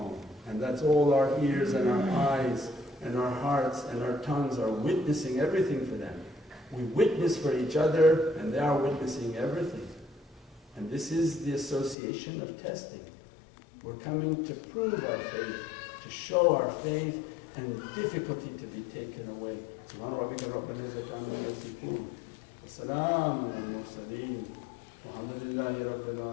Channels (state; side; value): drops out; right; at 12.0 s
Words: And that's all our ears and our eyes and our hearts and our tongues are witnessing everything for them. We witness for each other and they are witnessing everything. And this is the association of testing. We're coming to prove our faith, to show our faith, and difficulty to be taken away. Subhana rabbika rabbil izzati amma yasifun. Wa salamun alal mursaleen. Walhamdulillahi rabbil